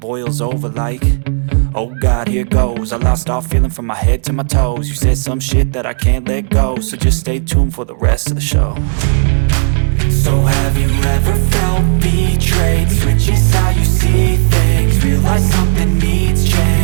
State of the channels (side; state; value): left; silent; 68 dB below the other